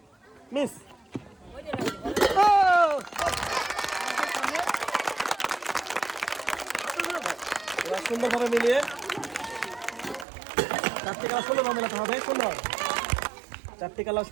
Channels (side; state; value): left; drops out; at 10.2 s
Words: মিস। এবার সুন্দরভাবে মিলিয়ে চারটি কালার সুন্দরভাবে মেলাতে হবে। সুন্দর, চারটি কালার